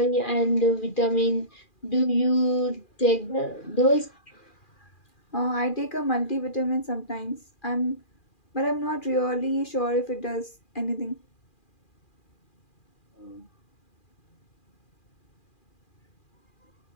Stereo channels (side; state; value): right; late; 2.4 ms